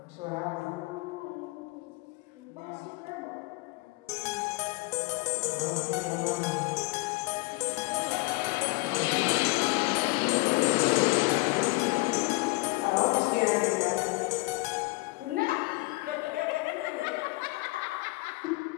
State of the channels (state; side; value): quieter; right; 24.4 dB